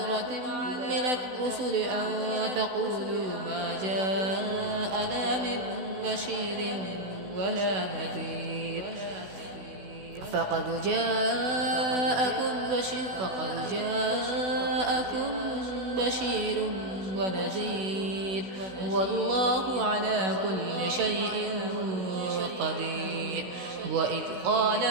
من الرسل أن تقولوا ما جاءنا من بشير ولا نذير فقد جاءكم بشير ونذير والله على كل شيء قدير. وإذ قال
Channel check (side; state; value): left; late; 16 ms